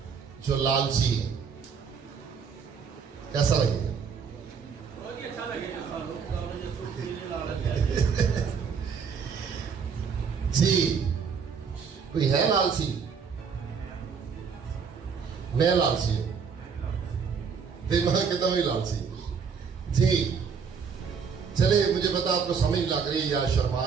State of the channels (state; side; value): quieter; left; 6.2 dB